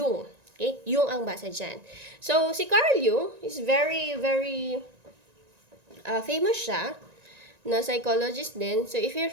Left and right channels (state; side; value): late; left; 1.9 ms